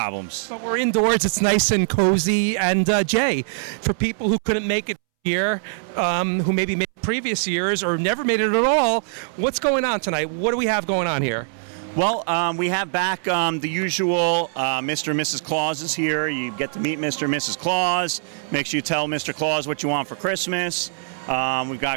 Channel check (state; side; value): silent; left; 64 dB below the other